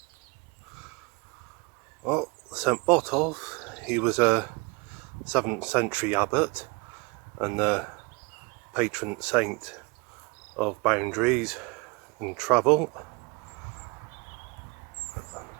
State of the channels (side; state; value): left; quieter; 28.1 dB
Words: Well, St Botolph, he was a 7th century abbot and the patron saint of boundaries and travel,